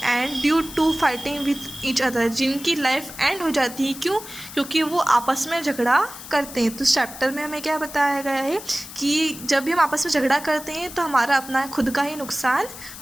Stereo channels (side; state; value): left; noise; hiss, 13 dB below the sound